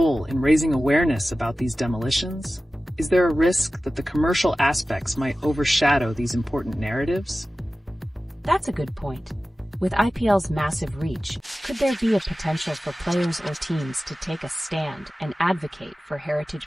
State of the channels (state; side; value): normal; both; correlation 0.95